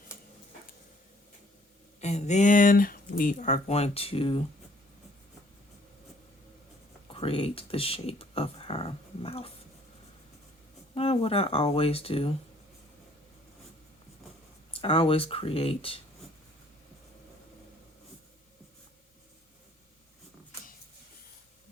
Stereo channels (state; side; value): normal; both; correlation 0.60